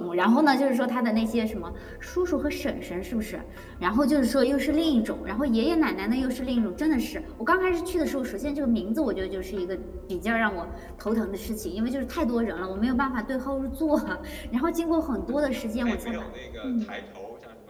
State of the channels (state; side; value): identical; both; correlation 1.00